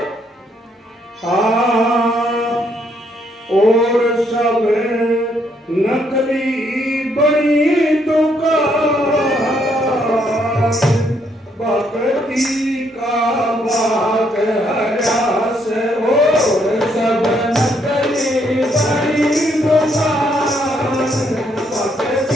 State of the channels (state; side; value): normal; both; correlation 0.72